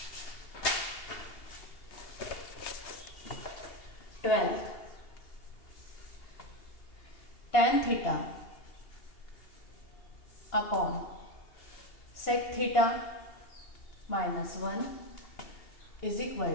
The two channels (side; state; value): right; late; 2.8 ms